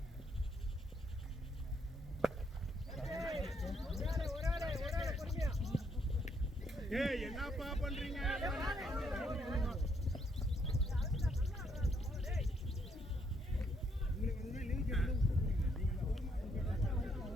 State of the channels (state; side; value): normal; both; correlation 0.72